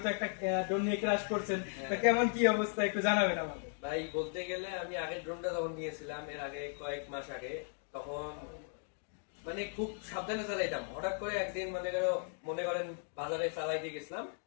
তো একটা ড্রোন নিয়ে ক্রাশ করছেন, তো কেমন কি অবস্থা একটু জানাবেন আমাকে। ভাই বলতে গেলে আমি আগের ড্রোনটা যখন নিয়েছিলাম এর আগে কয়েক মাস আগে, তখন মানে খুব সাবধানে চালাইতাম। হঠাৎ করে একদিন মনে করেন বাজারে চালাইতে গেছিলাম,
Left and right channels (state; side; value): silent; right; 53 dB below the other